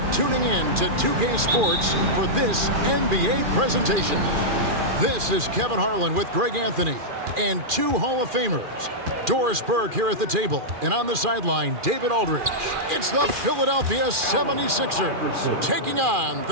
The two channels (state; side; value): late; left; 2.4 ms